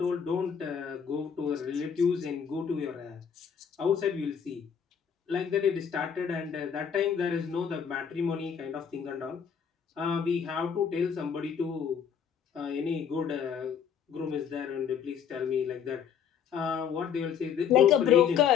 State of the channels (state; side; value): quieter; right; 7.6 dB